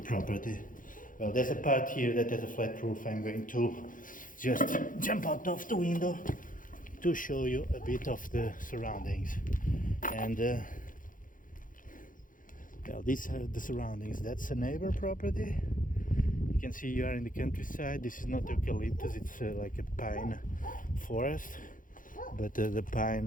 Well, there's a part here that has a flat roof. I'm going to just jump out of the window to show you a bit of the surroundings. And well, these are the surroundings. That's a neighbor property. You can see you are in the countryside. This is not eucalyptus, it's like a pine forest. But the pine,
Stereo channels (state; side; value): late; right; 0.39 ms